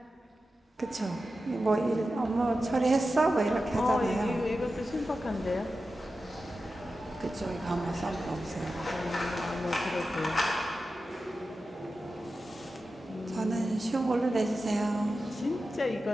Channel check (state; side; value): normal; both; correlation 0.92